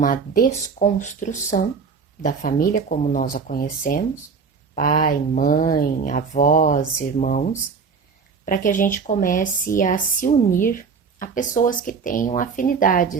desconstrução da família como nós a conhecemos, pai, mãe, avós, irmãos, para que a gente comece a se unir a pessoas que tenham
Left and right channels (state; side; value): quieter; left; 5.5 dB